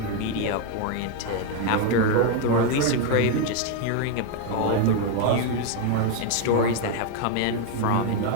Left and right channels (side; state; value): both; different; correlation 0.01